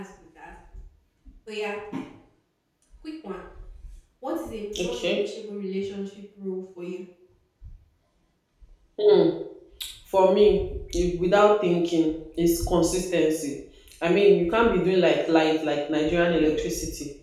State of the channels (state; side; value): identical; both; correlation 1.00